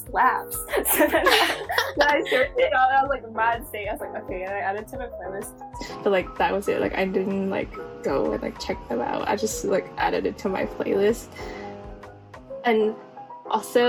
So then I searched it out, and I was like, Mansei. I was like, okay, and I added to my playlist. But like that was it. Like I didn't like go and like check them out. I just like added it to my playlist. And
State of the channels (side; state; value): both; identical; correlation 1.00